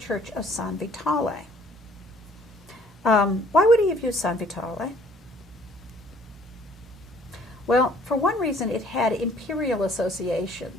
of San Vitale. Why would he have used San Vitale? Well, for one reason, it had imperial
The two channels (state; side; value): normal; both; correlation 0.58